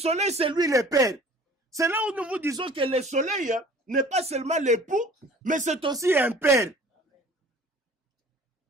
c'est lui le Père. C'est là où nous vous disons que le soleil n'est pas seulement l'époux, mais c'est aussi un père.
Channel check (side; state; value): both; normal; correlation 0.49